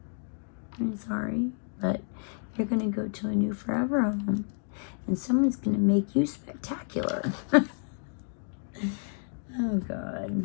I'm sorry, but you're gonna go to a new forever home, and someone's gonna make you spectacular. Oh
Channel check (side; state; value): right; silent; 58 dB below the other